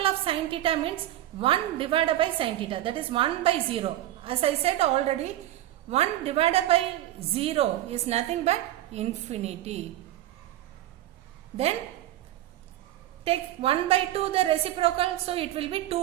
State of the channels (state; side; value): quieter; left; 14.1 dB